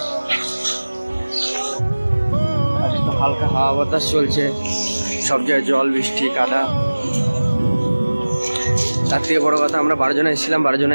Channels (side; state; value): both; inverted; correlation -1.00